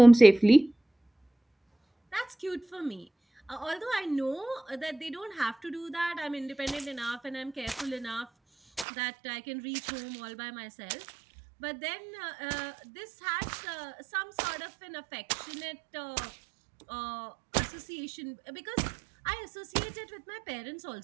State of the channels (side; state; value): left; drops out; at 8.8 s